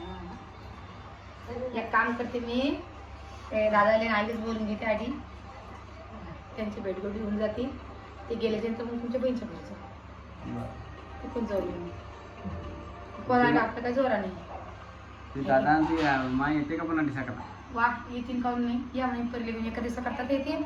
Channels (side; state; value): both; identical; correlation 1.00